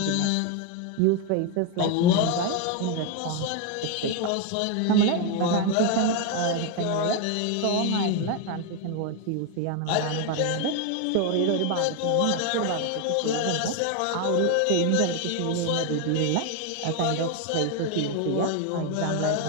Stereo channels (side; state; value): both; different; correlation 0.01